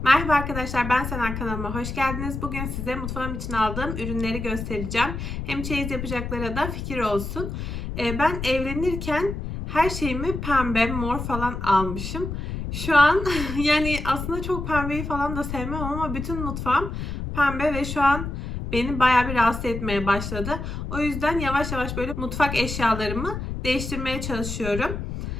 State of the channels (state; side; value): noise; left; rumble, 5 dB below the sound